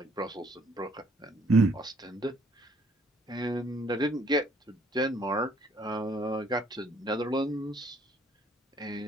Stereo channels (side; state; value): both; normal; correlation 0.63